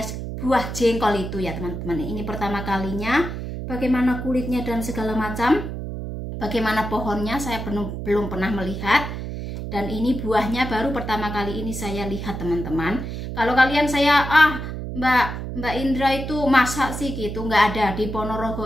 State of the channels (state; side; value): noise; right; hum, 6 dB below the sound